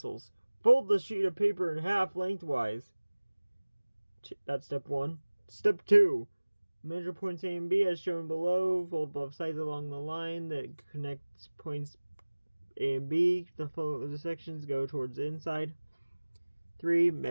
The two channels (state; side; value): inverted; both; correlation -1.00